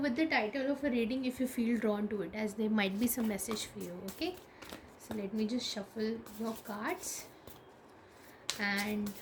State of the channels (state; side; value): identical; both; correlation 1.00